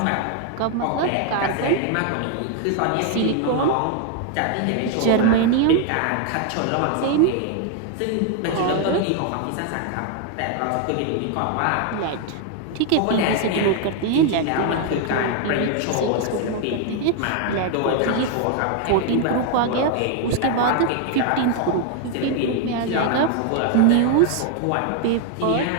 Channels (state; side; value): different; both; correlation 0.01